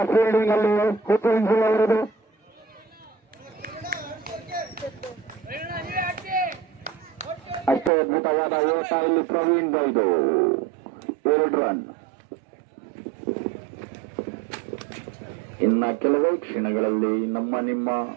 ಫೀಲ್ಡಿಂಗ್ ಅಲ್ಲಿ ಹುಸೇನ್ ಜಿಲ್ ಅವರದು. ಅಷ್ಟೇ ಅದ್ಭುತವಾದ ಓಟ ಇಲ್ಲಿ ಪ್ರವೀಣ್ ಬೈದು 2 ರನ್. ಇನ್ನ ಕೆಲವೇ ಕ್ಷಣಗಳಲ್ಲಿ ನಿಮ್ಮ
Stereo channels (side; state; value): left; drops out; at 7.9 s